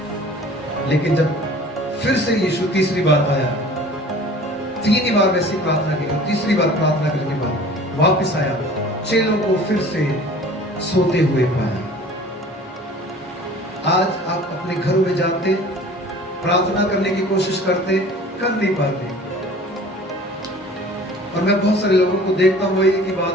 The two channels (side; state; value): both; normal; correlation 0.46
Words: लेकिन जब फिर से यीशु तीसरी बार आया, तीन ही बार वैसी प्रार्थना की, तीसरी बार प्रार्थना करने के बाद वापस आया, चेलों को फिर से सोते हुए पाया। आज आप अपने घरों में जाते, प्रार्थना करने की कोशिश करते, कर नहीं पाते। और मैं बहुत सारे लोगों को देखता हूँ, वही की बात